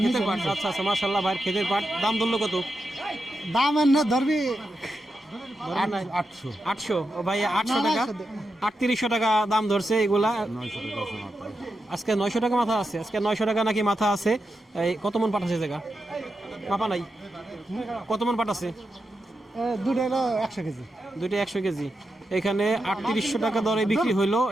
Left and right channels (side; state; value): both; normal; correlation 0.88